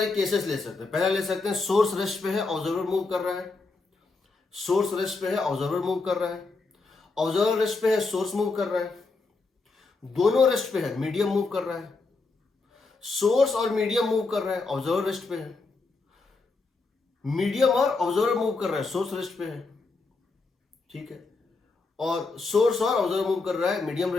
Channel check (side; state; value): right; quieter; 3.8 dB